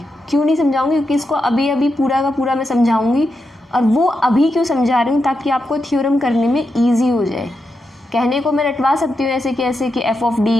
क्यों नहीं समझाऊंगी, क्योंकि इसको अभी पूरा का पूरा मैं समझाऊंगी, और वो अभी क्यों समझा रही हूँ, ताकि आपको थ्योरम करने में ईजी हो जाए। कहने को मैं रटवा सकती हूँ ऐसे कि एफ ऑफ डी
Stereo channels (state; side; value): normal; both; correlation 0.86